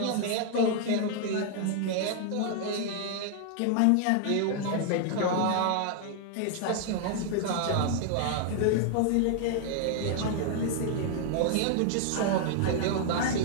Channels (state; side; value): different; both; correlation 0.00